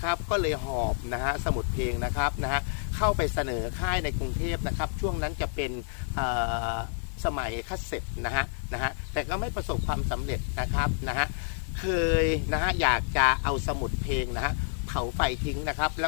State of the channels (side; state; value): right; silent; digital silence